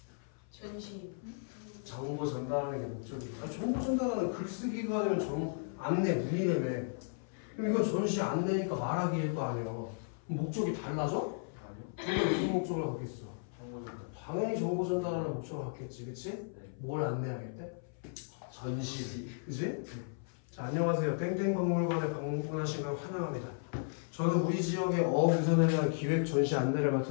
전시. 정보 전달하는 게 목적이야. 정보 전달하는 글쓰기가 아니면 안내문이라며. 그럼 이건 전시 안내니까 말하기일 거 아니야. 목적이 달라져? 아니요. 이게 무슨 목적을 갖겠어? 정보 전달. 당연히 정보 전달하는 목적을 갖겠지, 그치? 네. 뭘 안내하겠대? 전시, 그치? 자, 안녕하세요. 땡땡박물관에 방문하신 걸 환영합니다. 저는 우리 지역의 어부선에 대한 기획 전시 안내를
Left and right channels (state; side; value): silent; right; 54 dB below the other